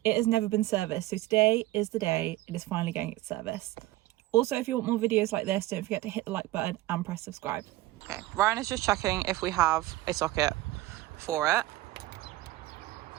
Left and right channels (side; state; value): left; quieter; 17.4 dB